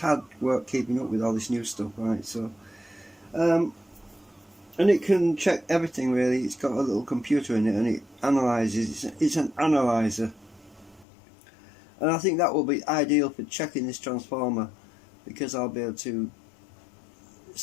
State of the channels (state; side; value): drops out; right; at 11.1 s